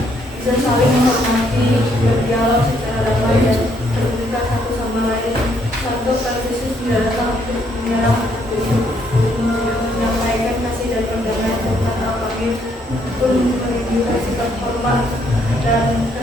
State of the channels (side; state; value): both; normal; correlation 0.71